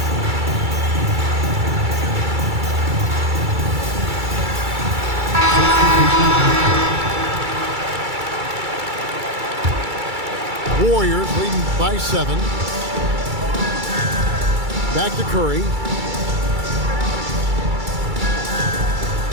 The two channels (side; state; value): left; late; 2.3 ms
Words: Warriors leading by 7. Back to Curry.